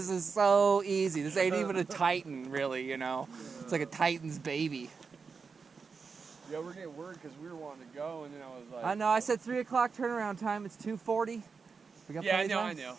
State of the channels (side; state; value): left; quieter; 5.2 dB